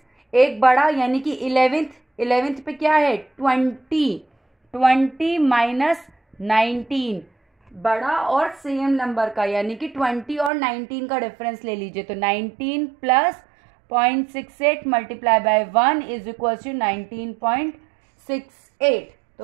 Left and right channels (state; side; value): drops out; left; at 10.5 s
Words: एक बड़ा यानी कि 11th पे क्या है 20 माइनस 19, बड़ा और सेम नंबर का यानी कि 20 और 19 का डिफरेंस ले लीजिए। तो 19 plus 0.68 multiply by 1 is equal to 19.68। तो